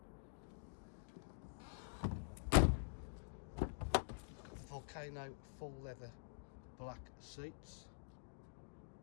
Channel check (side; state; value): right; silent; digital silence